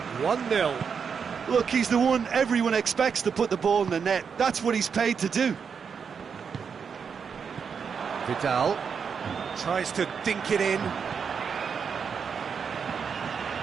1-0. Look, he's the one everyone expects to put the ball in the net. That's what he's paid to do. Vidal tries to dink it in.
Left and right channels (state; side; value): quieter; left; 6.4 dB